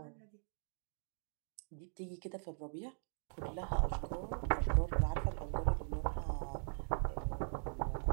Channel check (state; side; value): silent; left; digital silence